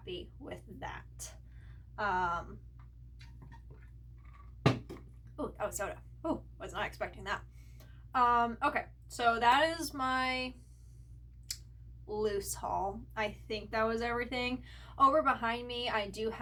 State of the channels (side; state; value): both; identical; correlation 1.00